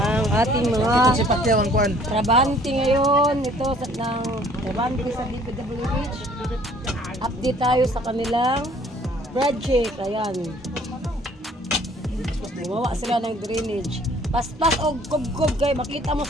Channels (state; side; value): normal; both; correlation 0.57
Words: ating mga Si Pacquiao ang kuan. trabante ngayon. Ito ng trabante sa DPWH. Update tayo sa kanilang project. Ayan. Gumawa sila ng drainage. Paspas o gob-gob kay makita mo